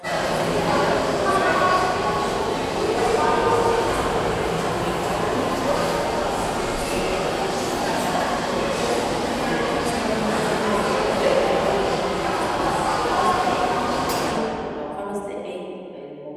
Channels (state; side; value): identical; both; correlation 1.00